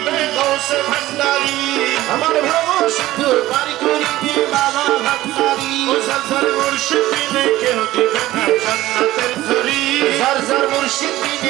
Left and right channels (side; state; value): left; quieter; 16.0 dB